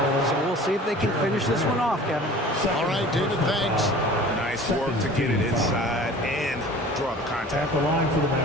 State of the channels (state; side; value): normal; both; correlation 0.44